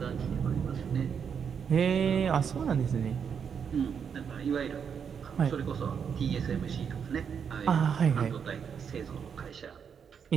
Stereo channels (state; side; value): quieter; left; 7.1 dB